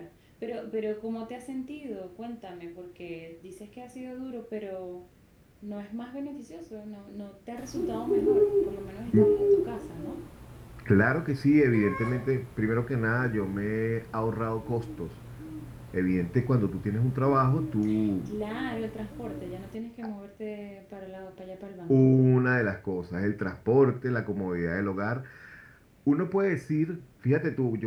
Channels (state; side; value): identical; both; correlation 1.00